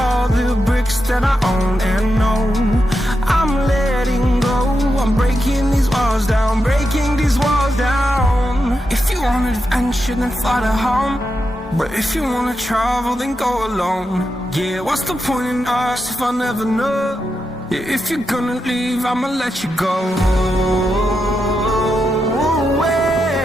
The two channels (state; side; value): normal; both; correlation 0.86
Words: the bricks that I own and know. I'm letting go, I'm breaking these walls down, breaking these walls down. If you want adventure, then fly to home. But if you wanna travel, then go alone. Yeah, what's the point in us if I never know? Yeah, if you're gonna leave, I'ma let you go.